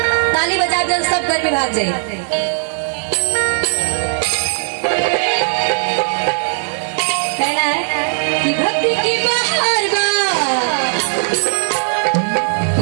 ताली बजा दे, सब गर्मी भाग जाए। कहना है कि भक्ति की बहार बा, कि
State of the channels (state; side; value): silent; left; digital silence